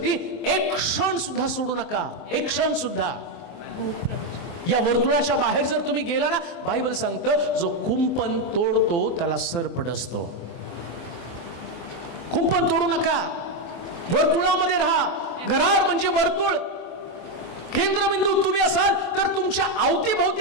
एक क्षण सुद्धा सोडू नका. एक क्षण सुद्धा. या वर्तुळाच्या बाहेर जर तुम्ही गेला ना, बायबल सांगतं जो कुंपण तोडतो त्याला सर्प डसतो. कुंपण तोडू नका, वर्तुळामध्ये राहा. गरार म्हणजे वर्तुळ, केंद्रबिंदू तुम्ही असाल तर तुमच्या अवतीभोवती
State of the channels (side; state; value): right; late; 23 ms